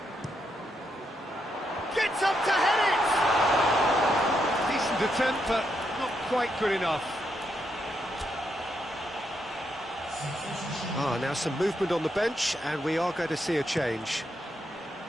Gets up to head it! Decent attempt, but not quite good enough. Now some movement on the bench, and we are going to see a change.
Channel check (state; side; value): normal; both; correlation 0.80